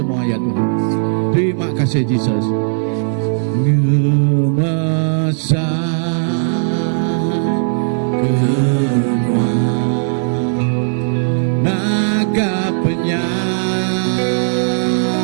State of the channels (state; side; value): silent; left; 57 dB below the other